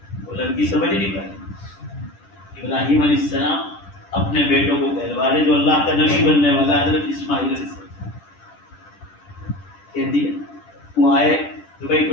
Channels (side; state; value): right; late; 10 ms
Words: وہ لڑکی سمجھ نہیں پائی. ابراہیم علیہ السلام اپنے بیٹوں کو کہلوا رہے جو اللہ کا نبی بننے والا حضرت اسماعیل علیہ السلام. کہہ دیا. وہ آئے تو بھائی